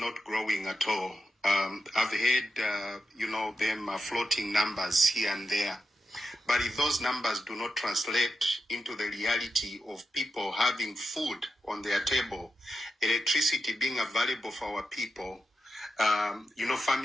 growing at all. I've heard, them floating numbers here and there. But if those numbers do not translate into the reality of people having food on their table, electricity being available for our people,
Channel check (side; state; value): both; normal; correlation 0.89